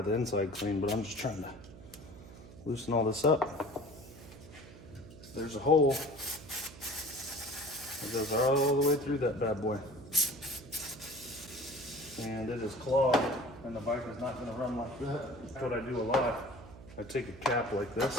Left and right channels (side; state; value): right; noise; hum, 17 dB below the sound